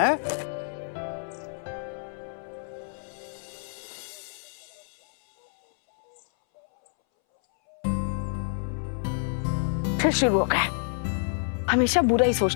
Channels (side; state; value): right; silent; 60 dB below the other